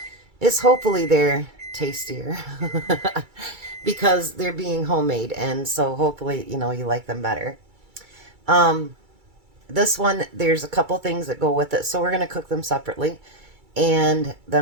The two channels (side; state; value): left; late; 2.3 ms